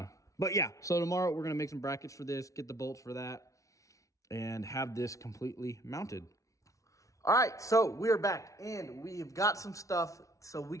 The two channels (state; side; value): late; right; 0.16 ms